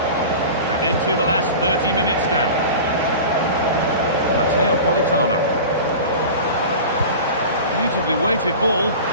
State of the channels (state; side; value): inverted; both; correlation -0.34